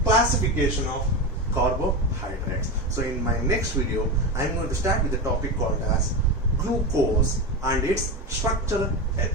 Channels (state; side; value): normal; both; correlation 0.19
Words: classification of carbohydrates. So in my next video, I am going to start with the topic called as glucose and its structural